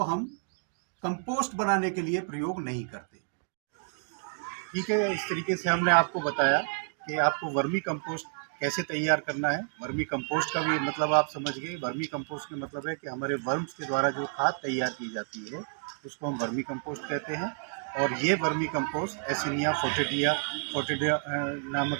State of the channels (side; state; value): left; silent; 58 dB below the other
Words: हम कंपोस्ट बनाने के लिए प्रयोग नहीं करते। ठीक है, इस तरीके से हमने आपको बताया कि आपको वर्मी कंपोस्ट कैसे तैयार करना है। वर्मी कंपोस्ट का भी मतलब आप समझ गए। वर्मी कंपोस्ट का मतलब है कि हमारे वर्म्स के द्वारा जो खाद तैयार की जाती है उसको हम वर्मी कंपोस्ट कहते हैं। और ये वर्मी कंपोस्ट एसिनिया फोर्टिडिया